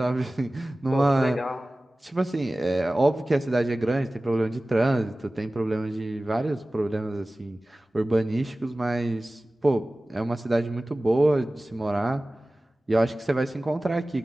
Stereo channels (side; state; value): both; normal; correlation 0.97